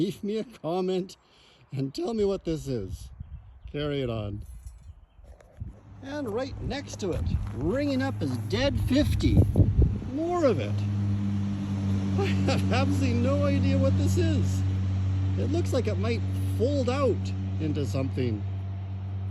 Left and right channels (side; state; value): both; identical; correlation 1.00